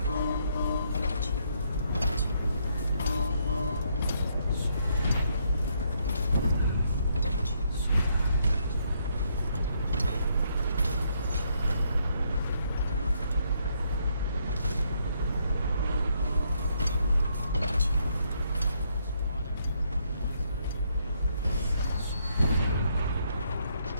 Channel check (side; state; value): both; inverted; correlation -0.73